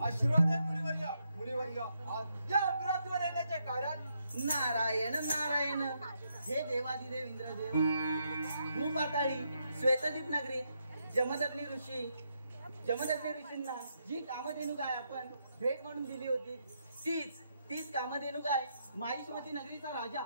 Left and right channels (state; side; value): inverted; both; correlation -0.79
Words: आशीर्वाद आहे मुनिवर्य. आज या अपराधवर येण्याचे कारण नारायण नारायण हे देवादिदेव इंद्रदेव. भूपाताळी श्वेतदीप नगरीत जमदग्नी ऋषींना जी कामधेनू गाय आपण भेट म्हणून दिली होती, तीच कामधेनू गाय माहिष्मती नगरीचा राजा